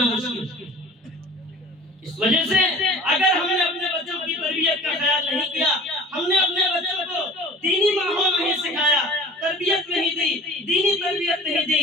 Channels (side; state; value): both; normal; correlation 0.42